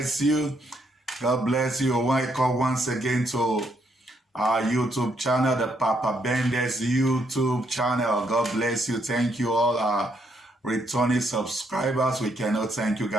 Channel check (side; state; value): both; normal; correlation 0.74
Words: you. God bless you. Welcome once again to our YouTube channel, the Papa Bendes YouTube channel. God bless you. Thank you all our returning subscribers. We cannot thank you